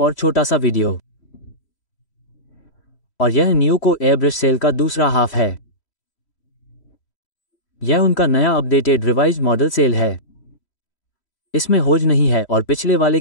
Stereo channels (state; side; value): late; right; 3.1 ms